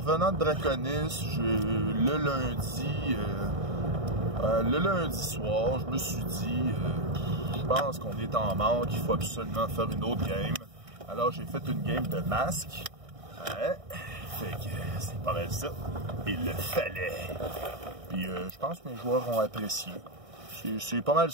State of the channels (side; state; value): left; late; 1.6 ms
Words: de Draconis, le lundi soir, je me suis dit, je pense qu'on est en manque, il faut absolument faire une autre game. Alors j'ai fait une game de masque. Ouais. Fait que c'est pas mal ça. Il le fallait. Puis je pense que mes joueurs ont apprécié. C'est pas mal